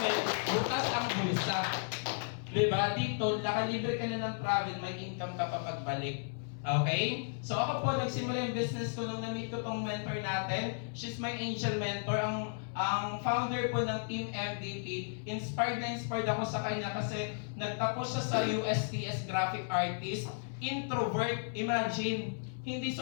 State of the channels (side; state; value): right; silent; 55 dB below the other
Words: bukas ang bulsa. Diba? Dito, nakalibre ka na ng travel, may income ka pa pagbalik. Okay? So ako po, nagsimula yung business ko nung na-meet ko tong mentor natin. She's my angel mentor. Ang founder po ng Team MVP. Inspired ako sa kanya kasi nagtapos siya sa USTS Graphic Artist. Introvert, imagine. Hindi